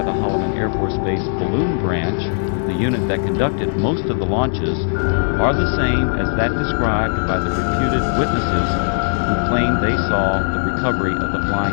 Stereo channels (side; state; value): right; silent; 67 dB below the other